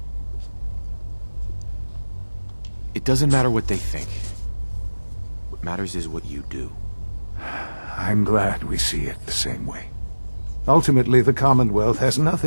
It doesn't matter what they think. What matters is what you do. I'm glad we see it the same way. Ultimately, the Commonwealth has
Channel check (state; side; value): inverted; both; correlation -1.00